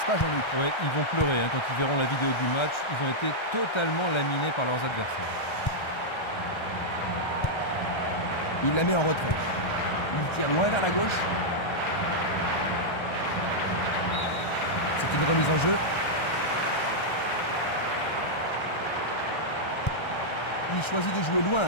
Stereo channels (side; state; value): right; late; 1.3 ms